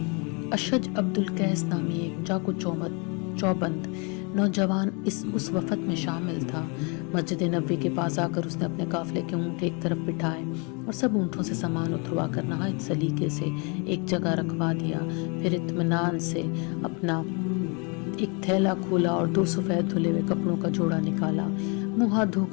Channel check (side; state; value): right; quieter; 33.3 dB